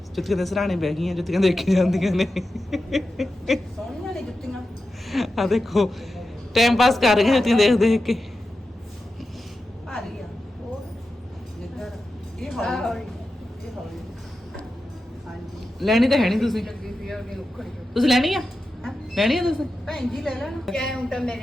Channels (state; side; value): normal; both; correlation 0.91